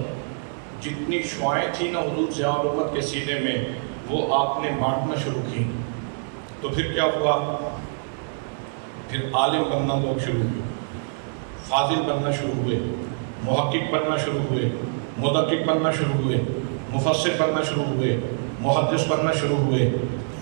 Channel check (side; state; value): left; silent; digital silence